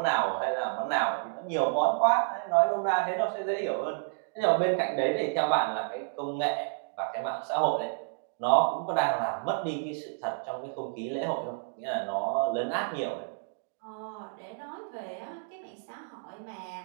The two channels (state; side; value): silent; left; digital silence